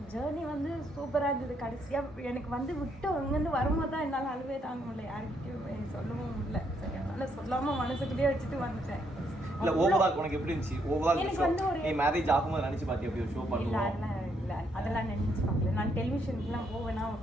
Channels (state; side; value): normal; both; correlation 0.74